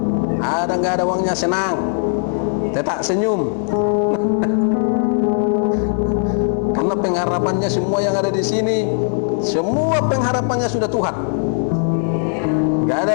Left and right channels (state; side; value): silent; right; digital silence